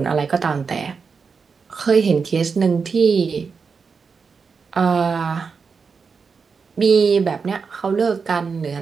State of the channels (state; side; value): quieter; left; 5.3 dB